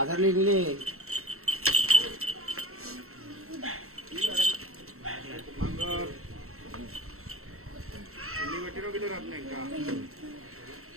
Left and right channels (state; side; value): late; left; 0.63 ms